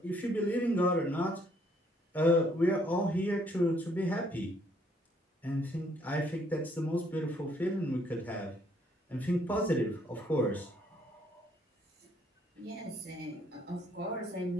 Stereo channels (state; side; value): normal; both; correlation 0.67